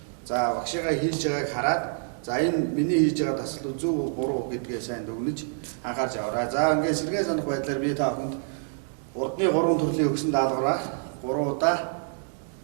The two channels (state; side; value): silent; left; 60 dB below the other